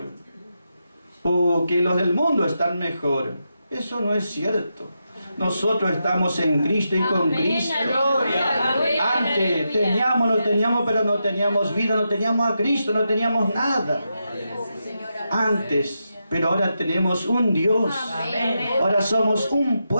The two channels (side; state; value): both; inverted; correlation -0.86